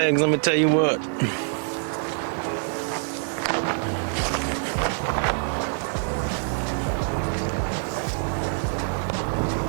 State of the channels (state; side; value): silent; left; 62 dB below the other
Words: let me tell you what.